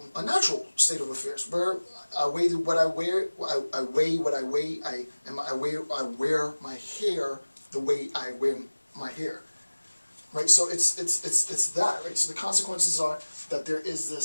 natural state of affairs, where I weigh what I wear, I weigh what I weigh, I wear my hair the way I wear my hair, right? So it's that, right? So the consequences are that there is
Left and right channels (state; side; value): inverted; both; correlation -1.00